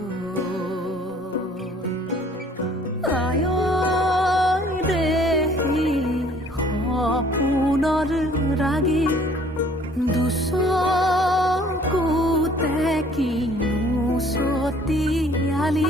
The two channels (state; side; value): normal; both; correlation 0.57